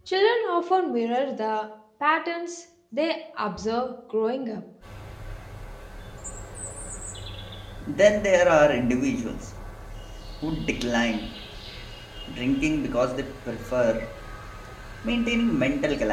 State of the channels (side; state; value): both; identical; correlation 1.00